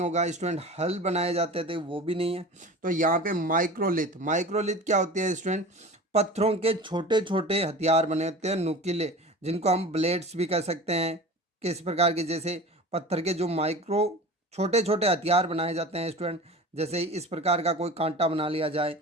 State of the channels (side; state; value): both; normal; correlation 0.36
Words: स्टूडेंट। हल बनाए जाते थे, वो भी नहीं है। तो यहाँ पे माइक्रोलिथ, माइक्रोलिथ क्या होती है स्टूडेंट, पत्थरों के छोटे छोटे हथियार बने होते हैं नुकीले, जिनको हम ब्लेड्स भी कह सकते हैं। किस प्रकार के, जैसे पत्थर के जो माइक्रो छोटे छोटे हथियार बनाए जाते हैं स्टूडेंट, जैसे इस प्रकार का कोई कांटा बना लिया जाए